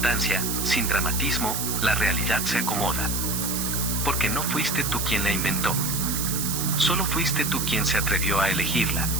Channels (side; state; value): right; noise; hiss, 2 dB below the sound